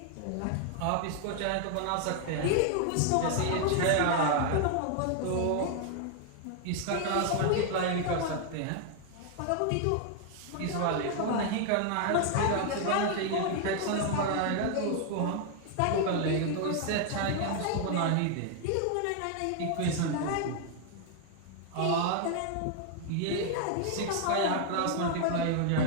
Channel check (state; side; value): different; both; correlation 0.00